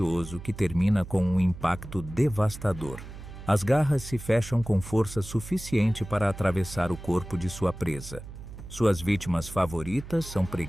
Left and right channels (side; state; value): right; noise; hum, 13 dB below the sound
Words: que termina com um impacto devastador. As garras se fecham com força suficiente para atravessar o corpo de sua presa. Suas vítimas favoritas são